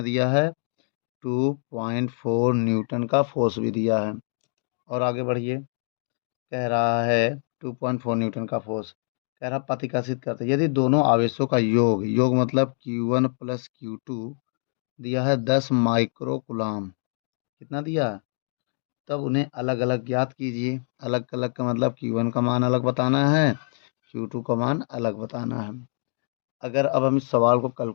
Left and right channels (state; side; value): silent; right; 56 dB below the other